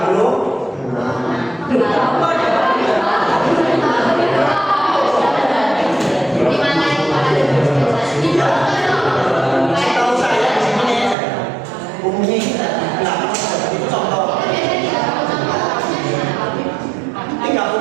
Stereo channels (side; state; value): left; drops out; at 11.2 s